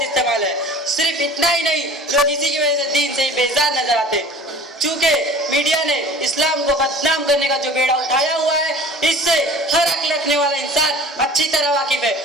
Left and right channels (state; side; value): normal; both; correlation 0.43